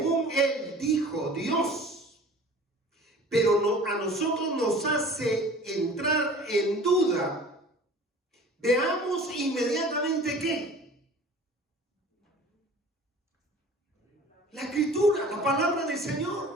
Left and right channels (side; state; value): both; normal; correlation 0.45